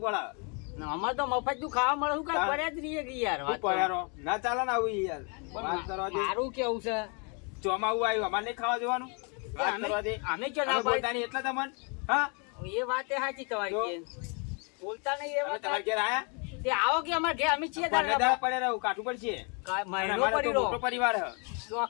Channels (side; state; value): right; quieter; 35.6 dB